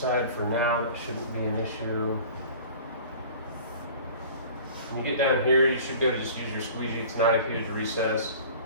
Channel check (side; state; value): both; inverted; correlation -0.43